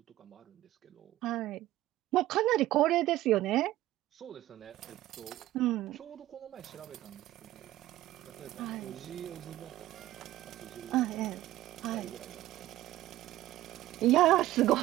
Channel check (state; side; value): quieter; left; 15.4 dB